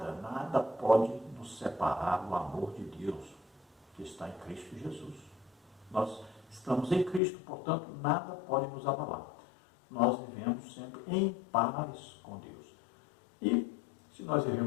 pode nos separar do amor de Deus que está em Cristo Jesus. Nós estamos em Cristo, portanto, nada pode nos abalar. Nós vivemos sempre em paz com Deus. E, se nós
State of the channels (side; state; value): right; drops out; at 7.2 s